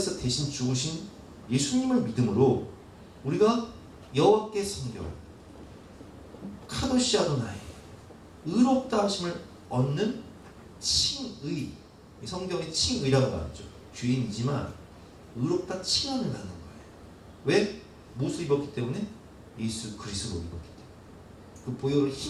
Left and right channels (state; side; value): identical; both; correlation 1.00